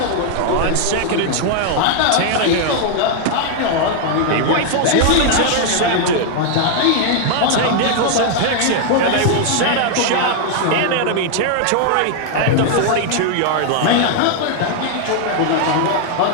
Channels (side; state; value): both; different; correlation 0.00